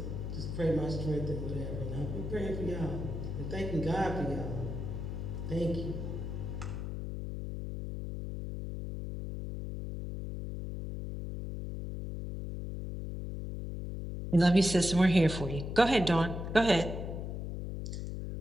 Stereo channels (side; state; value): left; noise; hum, 5 dB below the sound